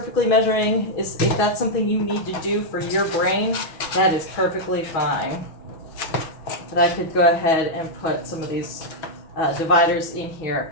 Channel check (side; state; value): right; late; 6.1 ms